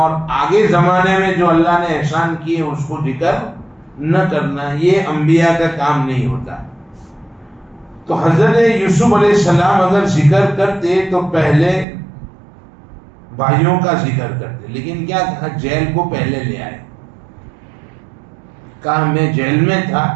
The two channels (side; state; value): left; drops out; at 11.9 s